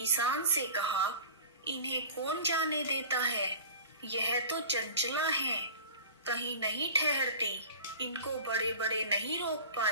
से कहा, इन्हें कौन जाने देता है, यह तो चंचला हैं, कहीं नहीं ठहरती, इनको बड़े बड़े नहीं रोक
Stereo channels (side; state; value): both; inverted; correlation -0.38